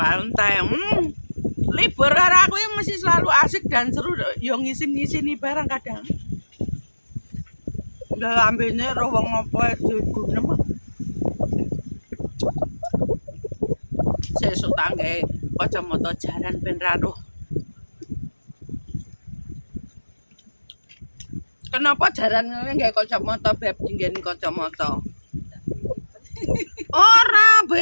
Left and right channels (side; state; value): both; inverted; correlation -1.00